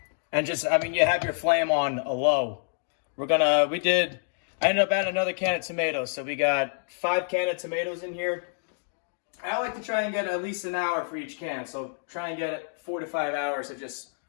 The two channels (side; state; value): right; silent; digital silence